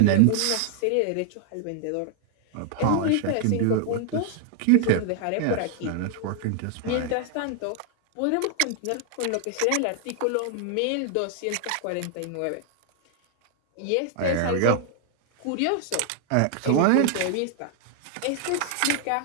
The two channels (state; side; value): different; both; correlation 0.00